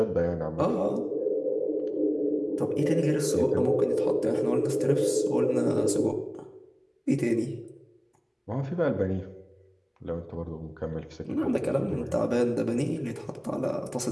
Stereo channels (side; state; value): both; identical; correlation 1.00